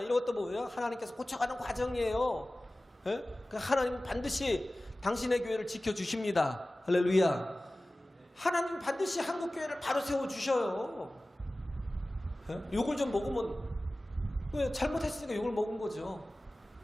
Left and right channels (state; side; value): normal; both; correlation 0.97